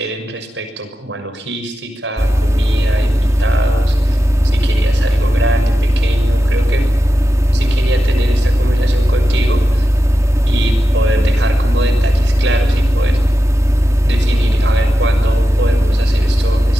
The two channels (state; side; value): normal; both; correlation 0.91